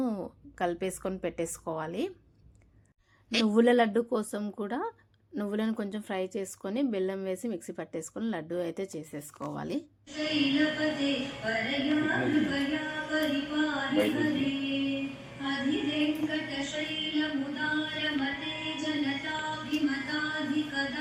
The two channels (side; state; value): both; identical; correlation 1.00